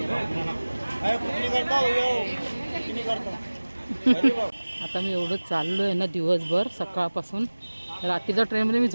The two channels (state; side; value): inverted; both; correlation -1.00